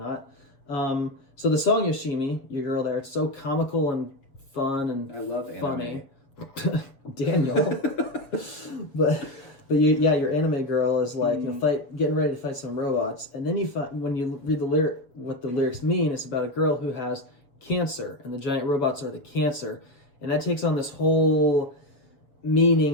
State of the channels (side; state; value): right; late; 7.1 ms